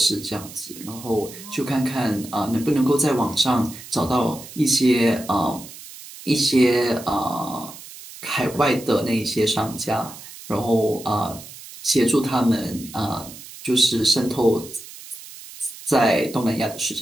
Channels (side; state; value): right; noise; hiss, 16 dB below the sound